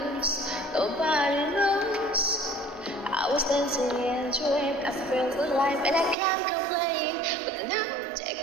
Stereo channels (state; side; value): drops out; left; at 6.2 s